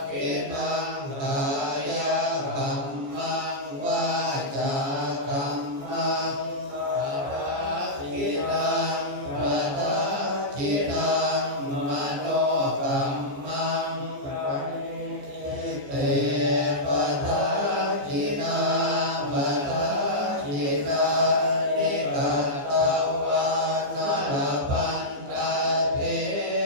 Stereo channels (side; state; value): left; late; 14 ms